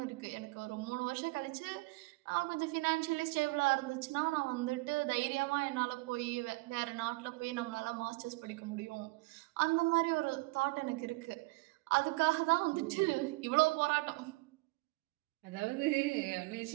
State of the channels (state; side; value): quieter; left; 23.6 dB